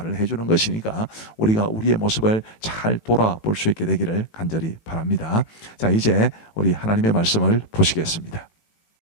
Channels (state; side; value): late; right; 18 ms